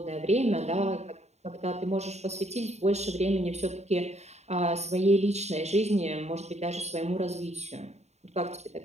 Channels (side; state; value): left; late; 0.32 ms